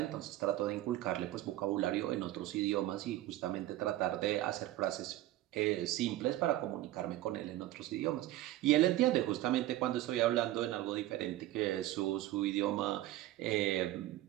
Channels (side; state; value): left; quieter; 15.2 dB